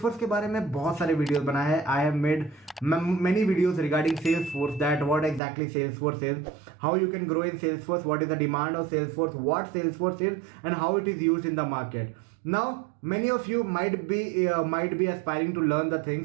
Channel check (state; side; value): drops out; left; at 5.4 s